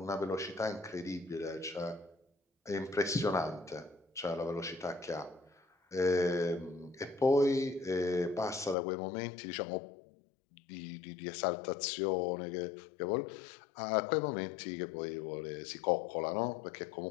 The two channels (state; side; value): drops out; right; at 8.8 s